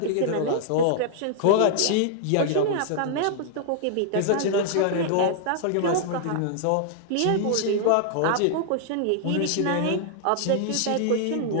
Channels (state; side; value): different; both; correlation -0.01